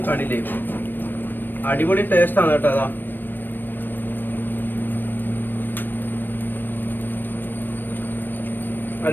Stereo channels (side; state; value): right; late; 0.093 ms